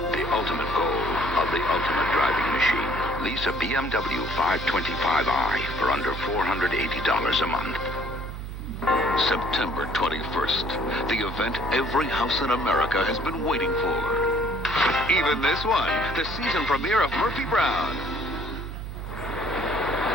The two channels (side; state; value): right; noise; hum, 8 dB below the sound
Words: the ultimate goal of the ultimate driving machine. Lease a BMW 525i for under $480 a month. September 21st, the event every house in America has been waiting for. Even this one, the season premiere of Murphy Brown.